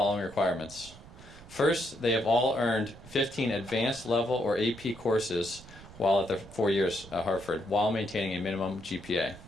requirements. First, they have all earned 15 advanced level or AP courses while at their 4 years at Hartford, while maintaining a minimum GPA.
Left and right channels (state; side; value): noise; right; rumble, 19 dB below the sound